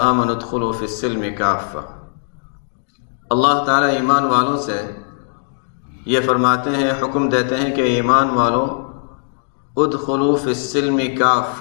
ادخلوا فی السلم کافہ، اللہ تعالیٰ ایمان والوں سے یہ فرماتے ہیں، حکم دیتے ہیں کہ ایمان والوں ادخلوا فی السلم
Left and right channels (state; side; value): silent; right; digital silence